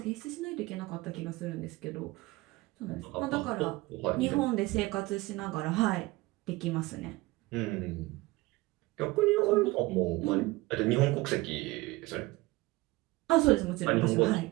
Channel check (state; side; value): quieter; left; 20.7 dB